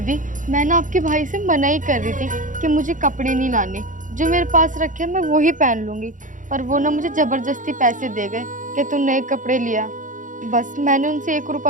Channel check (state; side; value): late; left; 0.38 ms